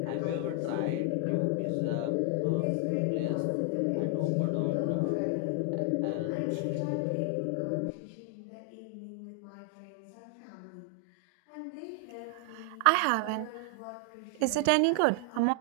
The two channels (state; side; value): different; both; correlation 0.00